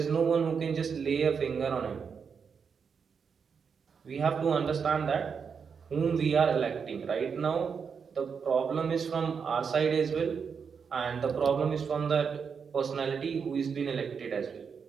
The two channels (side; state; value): left; quieter; 6.2 dB